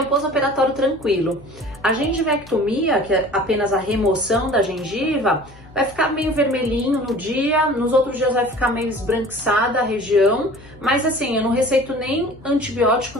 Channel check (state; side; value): noise; left; hum, 23 dB below the sound